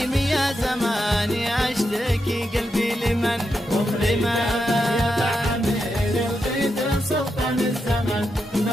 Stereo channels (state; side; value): normal; both; correlation 0.85